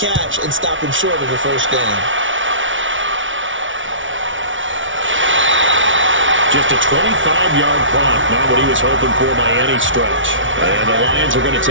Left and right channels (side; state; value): left; late; 0.56 ms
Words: and stop him short of the 1st down. Just a 25-yard pop, not what he was hoping for by any stretch. And the Lions are going to